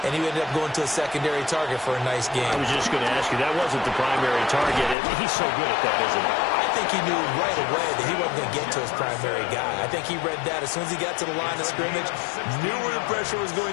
and he ended up going to a secondary target for a nice game. I was just going to ask you, that wasn't the primary target. He's so good at that, isn't he? I think he knew right away that he wasn't going to get to his primary guy. I think he read that as soon as he got to the line of scrimmage, knew where the pressure was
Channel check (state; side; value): drops out; right; at 5.0 s